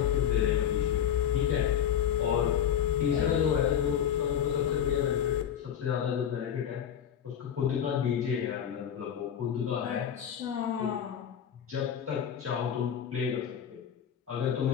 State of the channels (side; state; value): right; quieter; 9.1 dB